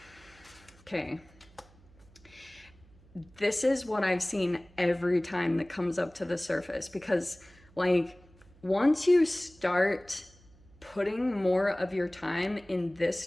Okay. This is what I've seen every time that comes up to the surface, because like once you start putting more of your time in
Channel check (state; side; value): noise; right; hum, 26 dB below the sound